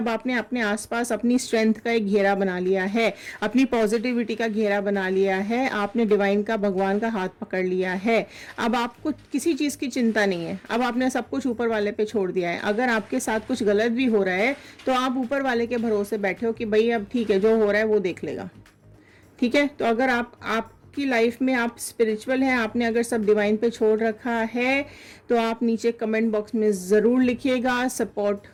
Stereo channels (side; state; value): both; identical; correlation 1.00